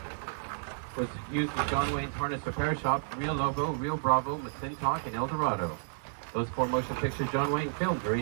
was used as John Wayne's harness repair shop, Rio Lobo, Rio Bravo, McClintock, and El Dorado. Those 4 motion pictures John Wayne filmed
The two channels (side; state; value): left; silent; digital silence